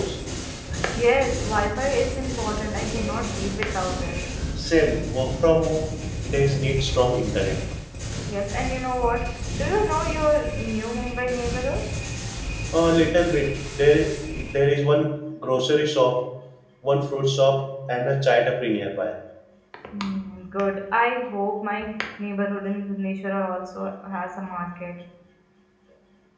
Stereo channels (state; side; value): identical; both; correlation 1.00